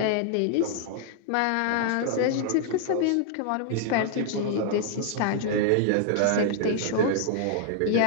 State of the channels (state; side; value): different; both; correlation 0.00